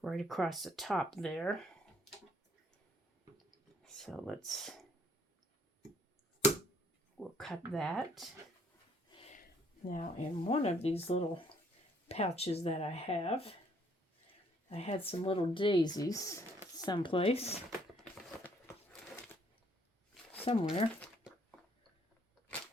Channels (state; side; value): normal; both; correlation 0.65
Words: right across the top there. So we'll cut that. Now in one of these little pouches that I had some little daisies someplace. Somewhere.